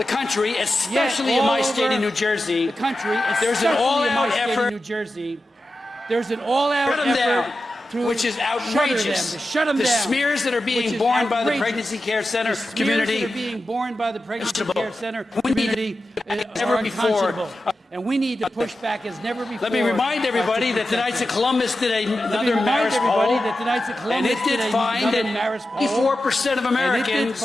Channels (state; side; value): normal; both; correlation 0.92